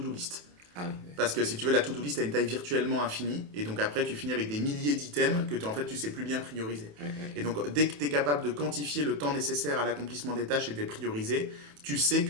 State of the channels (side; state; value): left; late; 28 ms